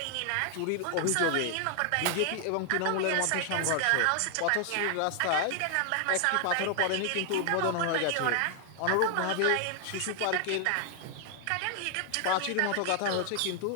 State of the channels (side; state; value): both; different; correlation 0.00